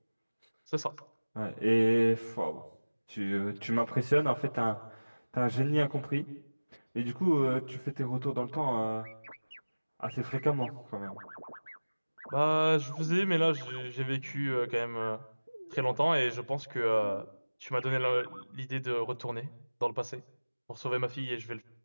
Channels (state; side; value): inverted; both; correlation -1.00